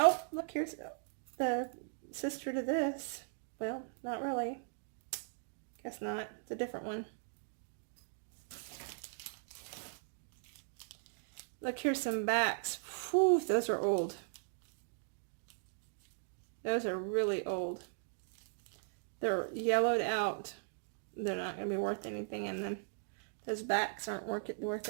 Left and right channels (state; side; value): silent; left; digital silence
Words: look, here's the sister to this. Well, not really. Guess not. It's a different one. Look, here's some backs. Whew, those are old. Those are really old. They're yellowed out. They're not going to be worth anything, and then those backs aren't worth